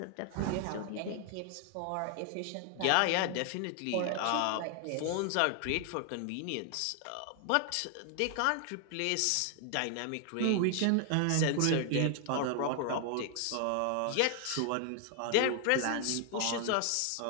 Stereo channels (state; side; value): different; both; correlation 0.00